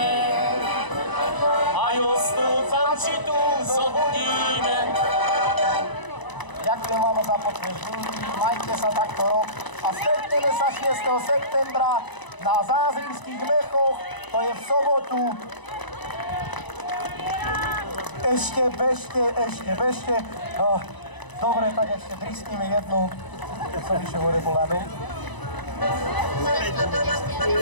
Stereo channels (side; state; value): right; late; 1.0 ms